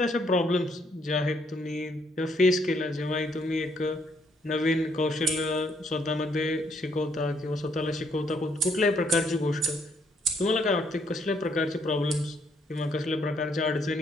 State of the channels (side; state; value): both; normal; correlation 0.70